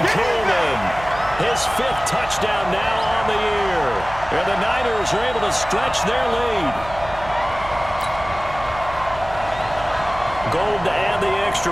Coleman, his 5th touchdown now on the year. And the Niners are able to stretch their lead. Gold to add the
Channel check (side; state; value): right; noise; hum, 14 dB below the sound